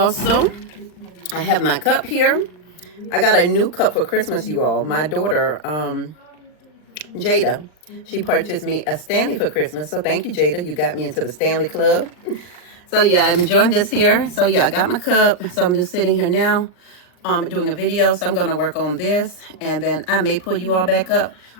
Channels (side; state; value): right; late; 39 ms